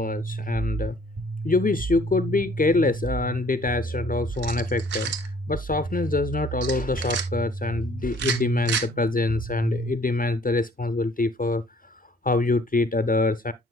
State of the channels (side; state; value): both; normal; correlation 0.57